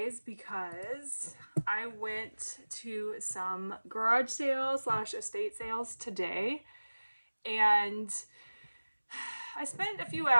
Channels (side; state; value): both; inverted; correlation -1.00